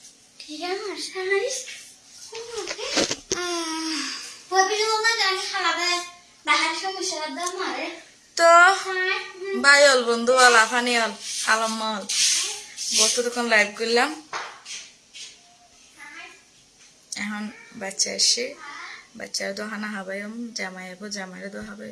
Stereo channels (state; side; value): identical; both; correlation 1.00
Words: ঠিক আছে ওই পিছনে না জানি খালাবে বাহার সমস্যা দাম মারে তো বাই হল বন্ধু হল আফানি হল আলম হল বসে তখন লাইভ করলাম এখন বাচ্চা এসে বাচ্চার দোহানা হাবাইম জামাই হবো জামাইরে দো